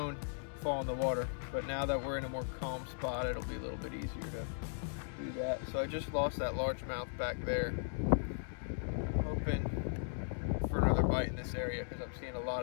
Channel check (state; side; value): silent; right; digital silence